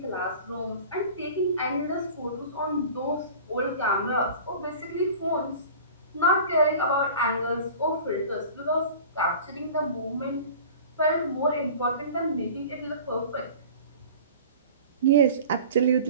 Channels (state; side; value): inverted; both; correlation -0.41